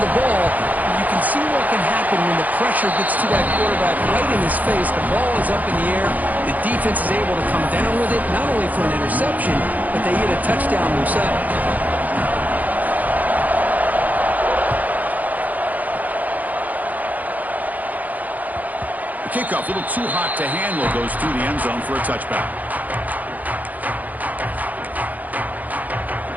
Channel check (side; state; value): left; late; 0.079 ms